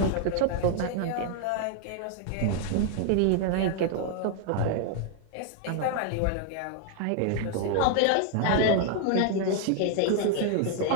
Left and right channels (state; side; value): different; both; correlation 0.00